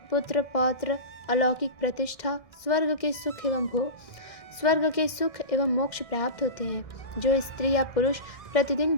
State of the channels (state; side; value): late; right; 1.6 ms